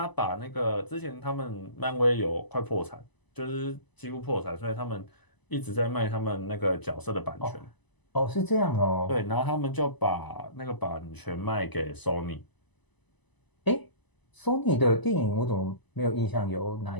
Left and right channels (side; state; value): right; late; 1.0 ms